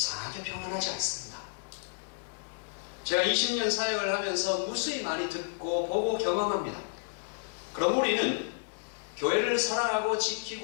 평안하지 않습니다. 제가 20년 사역을 하면서 무수히 많이 듣고 보고 경험합니다. 그럼 우리는 교회를 사랑하고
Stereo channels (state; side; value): silent; right; digital silence